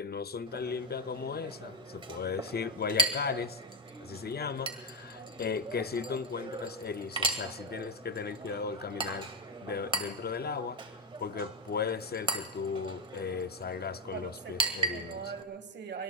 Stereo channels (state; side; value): normal; both; correlation 0.09